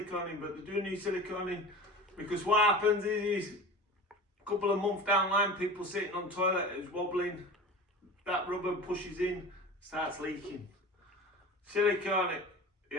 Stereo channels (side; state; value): both; normal; correlation 0.35